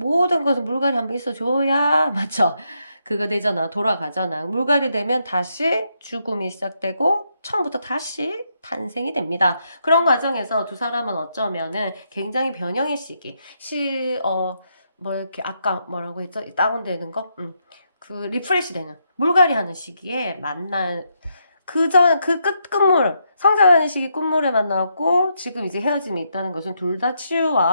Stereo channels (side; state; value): both; inverted; correlation -0.79